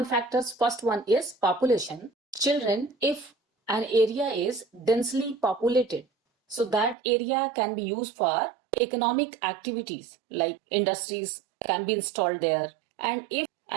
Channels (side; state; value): left; drops out; at 7.0 s